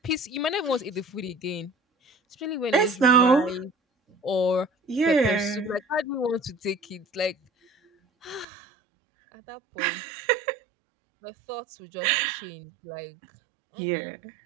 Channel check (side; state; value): left; drops out; at 8.5 s